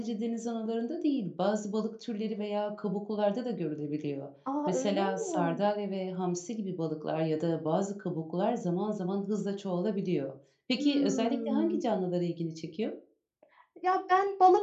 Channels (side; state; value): both; identical; correlation 1.00